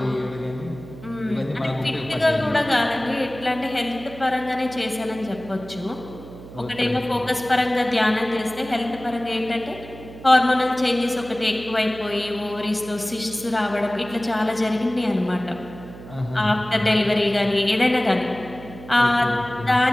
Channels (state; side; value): noise; right; hum, 16 dB below the sound